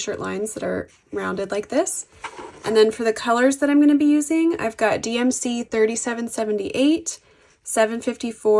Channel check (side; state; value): both; identical; correlation 1.00